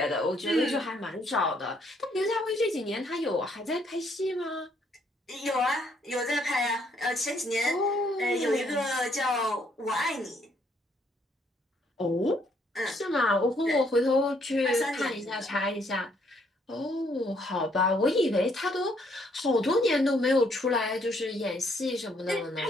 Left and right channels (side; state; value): both; normal; correlation 0.69